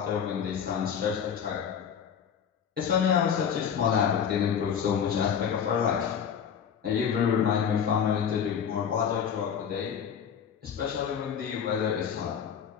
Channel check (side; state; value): right; quieter; 7.8 dB